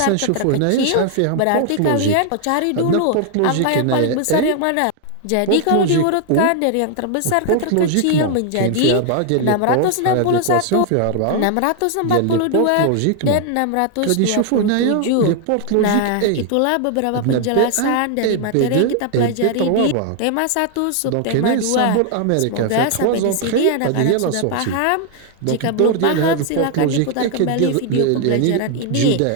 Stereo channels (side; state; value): both; different; correlation 0.00